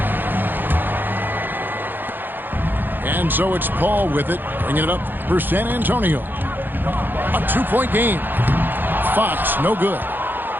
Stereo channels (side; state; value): left; late; 0.093 ms